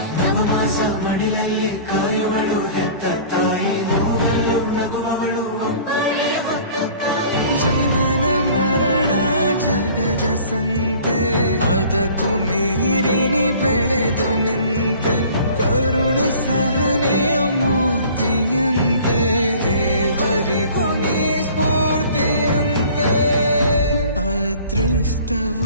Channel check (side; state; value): both; inverted; correlation -0.48